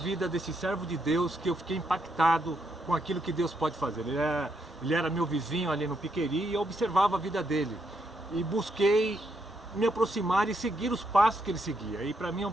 desse servo de Deus que eu fiquei impactado com aquilo que Deus pode fazer. Ele era meu vizinho ali no Piqueri e eu observava a vida dele. E busquei me aproximar e seguir os passos que ele seguia. E para mim é um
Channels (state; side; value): normal; both; correlation 0.78